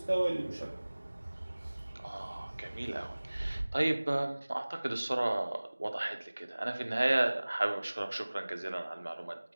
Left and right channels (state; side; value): inverted; both; correlation -1.00